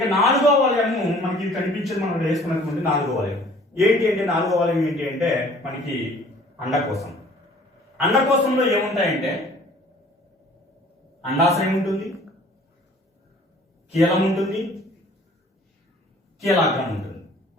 నాలుగవ వలయము మనకి కనిపించేది, మనం వేసుకున్నటువంటి నాలుగో వలయం ఏంటి అంటే, నాలుగో వలయం ఏంటి అంటే మనకి అండకోశం. అండకోశంలో ఏముంటాయంటే అండాశయం ఉంటుంది, కీలం ఉంటుంది, కీలాగ్రం ఉంటుంది.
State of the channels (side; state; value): both; normal; correlation 0.53